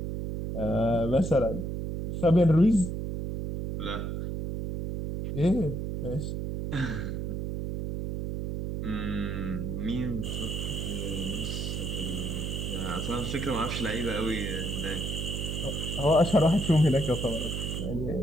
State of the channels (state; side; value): noise; right; hum, 3 dB below the sound